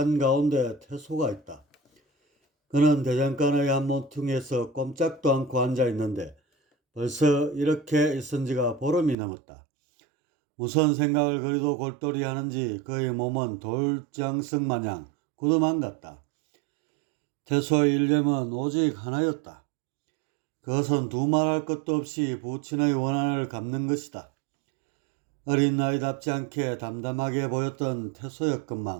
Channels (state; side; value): drops out; left; at 9.2 s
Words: 태소가 있다. 그는 대장간의 한 모퉁이에서 꼼짝도 않고 앉아 있는데 벌써 이렇게 있은 지가 보름이 넘었다. 무슨 생각을 그리도 골똘히 하는지 그의 몸은 돌장석 마냥 굳어만 같다. 태소의 일념은 오직 하나였다. 그것은 두말할 것도 없이 부친의 원한을 갚는 것이다. 어린 나이답지 않게 담담하게 보였던